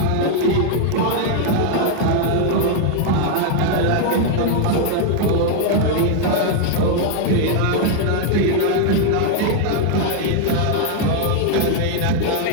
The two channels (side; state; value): both; different; correlation 0.00